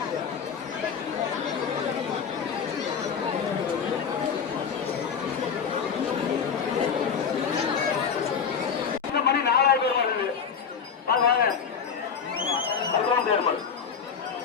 இந்த மணி 4000 பேர் வருது வாங்க அதுதான் தேர்மல்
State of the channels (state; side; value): quieter; right; 6.7 dB